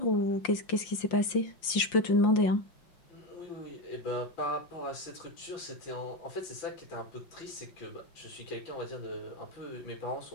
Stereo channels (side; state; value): right; late; 5.7 ms